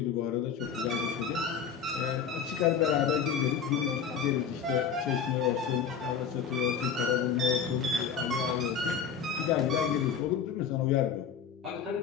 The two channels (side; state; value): right; quieter; 6.9 dB